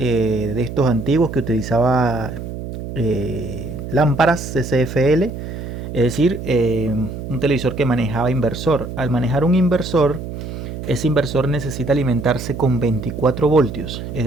estos antiguos que utilizaba lámparas CCFL, es decir, un televisor que manejaba inversor. Al manejar un inversor, ese inversor necesita alimentarse con 24 voltios, es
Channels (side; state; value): right; noise; hum, 8 dB below the sound